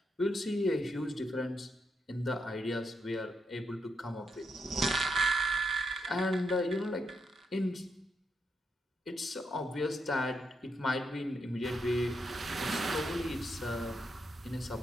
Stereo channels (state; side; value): normal; both; correlation 0.81